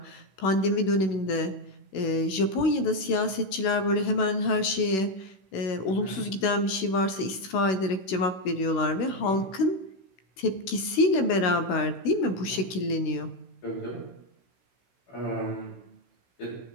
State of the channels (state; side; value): late; right; 16 ms